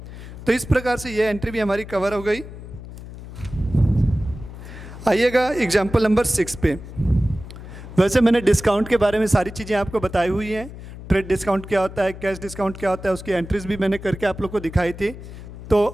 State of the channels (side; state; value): left; noise; hum, 13 dB below the sound